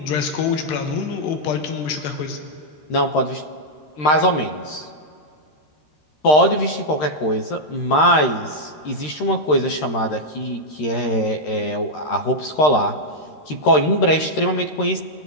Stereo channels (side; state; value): right; late; 13 ms